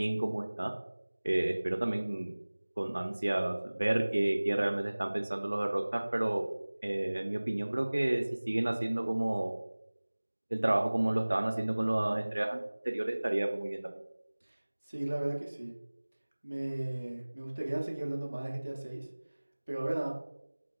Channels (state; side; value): inverted; both; correlation -1.00